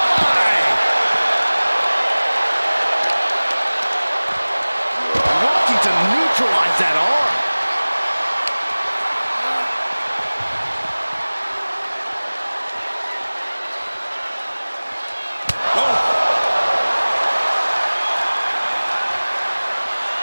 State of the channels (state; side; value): inverted; both; correlation -1.00